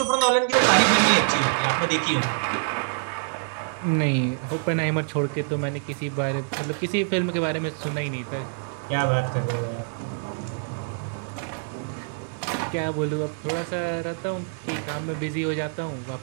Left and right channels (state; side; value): silent; left; 61 dB below the other